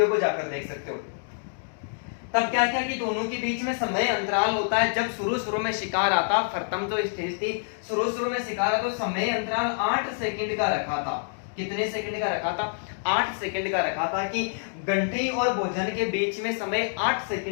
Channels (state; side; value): silent; right; digital silence